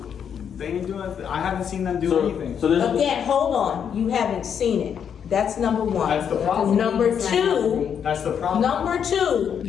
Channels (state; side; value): quieter; right; 7.9 dB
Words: They ain't doing. I haven't seen them do anything. So there's. Again, hold on. You haven't seen it. That's number one. That's the problem. Number two. That's the problem. Number two,